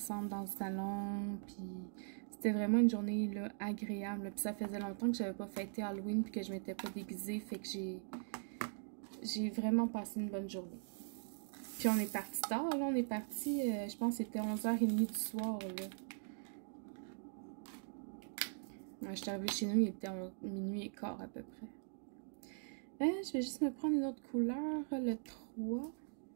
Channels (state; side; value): silent; left; digital silence